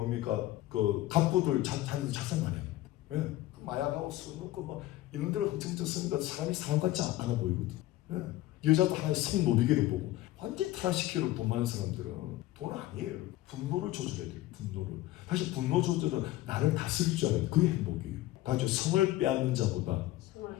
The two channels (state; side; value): quieter; right; 16.0 dB